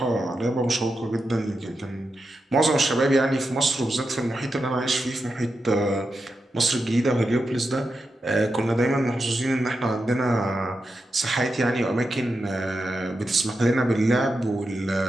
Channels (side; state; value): both; normal; correlation 0.88